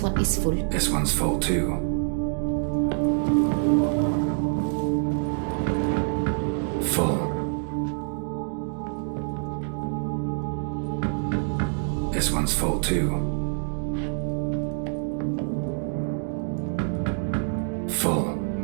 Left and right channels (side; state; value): left; silent; digital silence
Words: one is full. This one's full too. Full. This one's full too. Full.